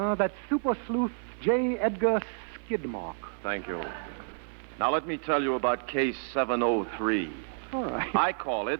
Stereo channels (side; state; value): left; silent; digital silence